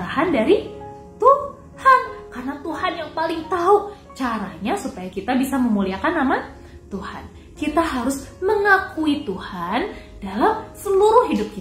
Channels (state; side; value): identical; both; correlation 1.00